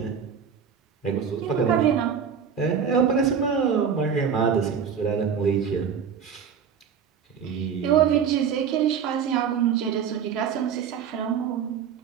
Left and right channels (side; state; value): left; quieter; 7.2 dB